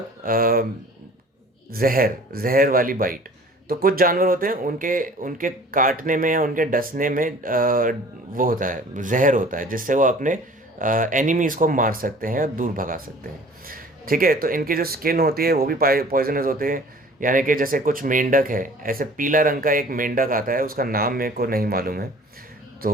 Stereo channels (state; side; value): normal; both; correlation 0.48